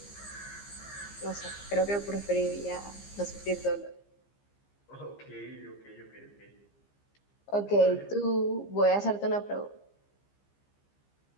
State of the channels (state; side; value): late; right; 15 ms